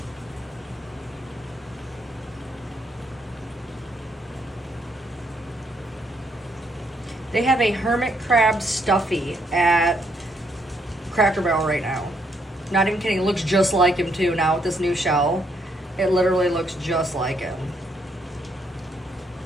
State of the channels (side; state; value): both; normal; correlation 0.73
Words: They have a hermit crab stuffy at Cracker Barrel right now. Not even kidding. It looks just like him too now with this new shell. It literally looks just like him.